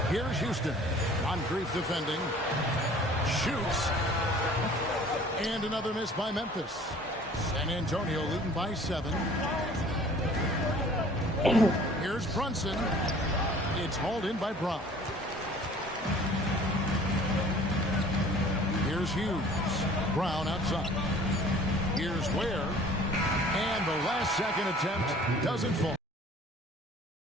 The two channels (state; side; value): normal; both; correlation 0.50